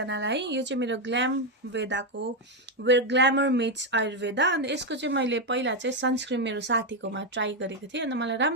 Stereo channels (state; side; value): normal; both; correlation 0.05